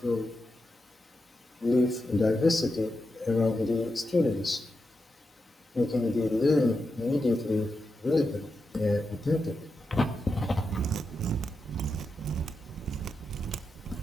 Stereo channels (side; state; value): both; normal; correlation 0.87